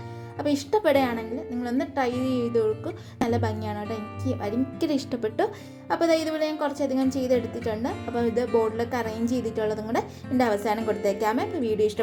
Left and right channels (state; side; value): identical; both; correlation 1.00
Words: അപ്പോൾ ഇഷ്ടപ്പെടുകയാണെങ്കിൽ നിങ്ങളൊന്ന് ട്രൈ ചെയ്ത് കൊടുക്കും. നല്ല ഭംഗിയാണ് കേട്ടോ, എനിക്ക് ഭയങ്കര ഇഷ്ടപ്പെട്ടു. അപ്പോൾ ഇതുപോലെ ഞാൻ കുറച്ചധികം ചെയ്തെടുത്തിട്ടുണ്ട്. അപ്പോൾ ഇത് ബോർഡിലൊക്കെ അറേഞ്ച് ചെയ്തിട്ടുള്ളതും കൂടെ എൻ്റെ അവസാനം കൊടുത്തേക്കാമേ. അപ്പോൾ വീഡിയോ